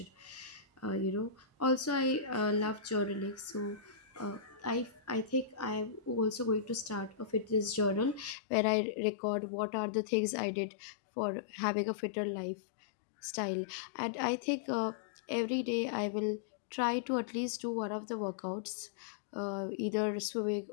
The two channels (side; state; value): right; drops out; at 8.3 s